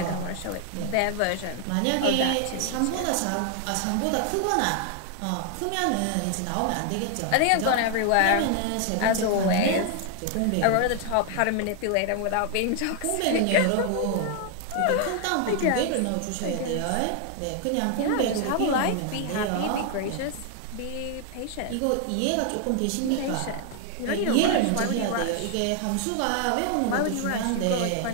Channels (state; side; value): different; both; correlation 0.00